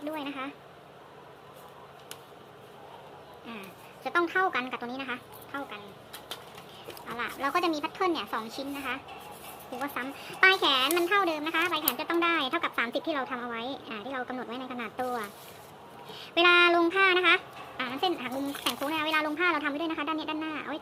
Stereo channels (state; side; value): identical; both; correlation 1.00